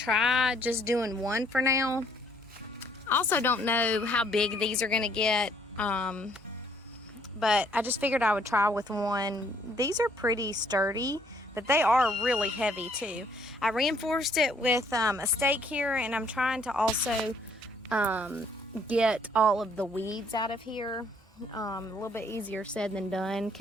just doing one for now. I also don't know how big these are gonna get, but I just figured I would try with one. These are pretty sturdy, but they are really heavy too. I reinforced it with a stake here, and I'm trying to also get all of the weeds out of here. A little bit easier said than done,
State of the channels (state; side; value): normal; both; correlation 0.64